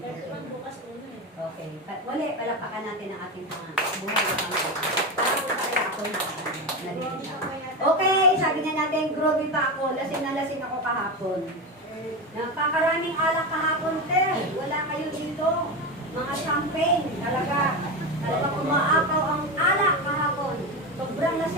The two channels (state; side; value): normal; both; correlation 0.18